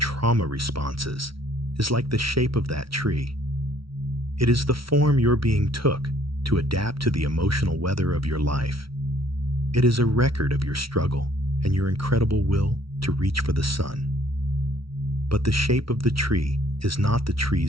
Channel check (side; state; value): left; late; 0.75 ms